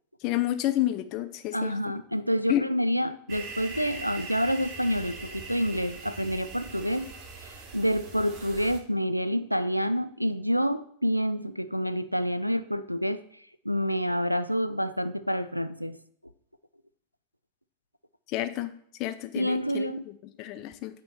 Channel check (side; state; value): both; inverted; correlation -0.78